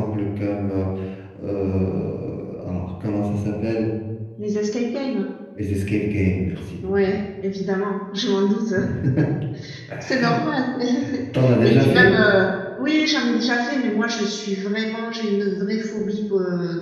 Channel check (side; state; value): both; identical; correlation 1.00